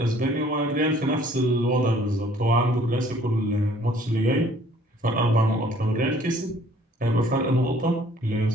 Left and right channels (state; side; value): normal; both; correlation 0.57